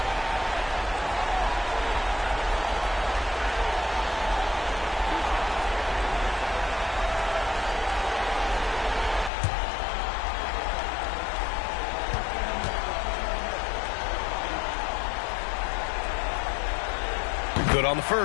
Good on the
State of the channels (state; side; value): drops out; right; at 9.3 s